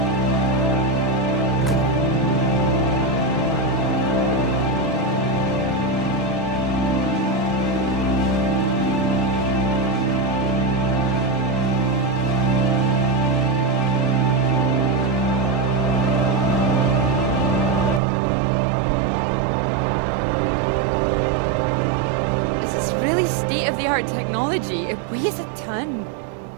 Really state-of-the-art technology. It weighs a ton.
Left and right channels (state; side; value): drops out; left; at 18.0 s